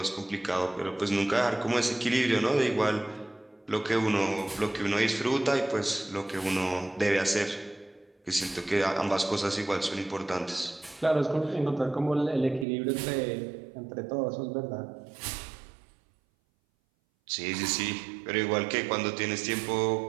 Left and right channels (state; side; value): drops out; left; at 12.7 s